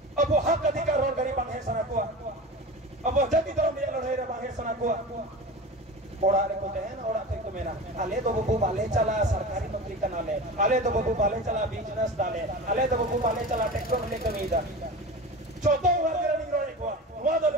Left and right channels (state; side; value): normal; both; correlation 0.31